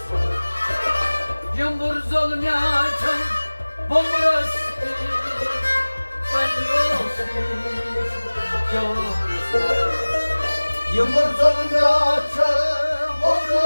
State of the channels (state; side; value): inverted; both; correlation -1.00